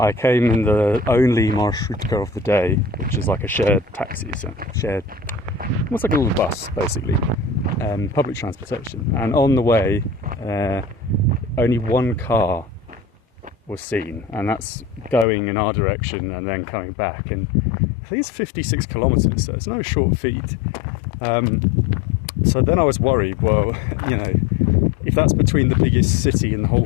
came in the only marshrutka of the day, which is like a shared taxi, so shared, almost like a little bus, basically, public transportation. And on the way, only one car was seen, and that's going in our direction and then coming back. And I think it's 56 kilometers, so it's no short feat. So then I was worried. Well, you know, if that's between the biggest city in the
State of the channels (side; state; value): right; drops out; at 15.2 s